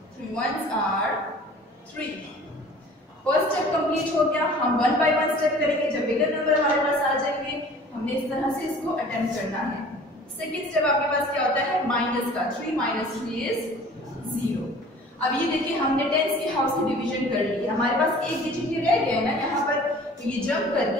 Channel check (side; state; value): both; normal; correlation 0.47